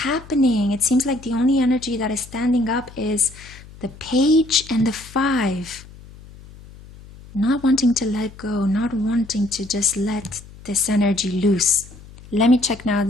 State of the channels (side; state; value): left; noise; hum, 19 dB below the sound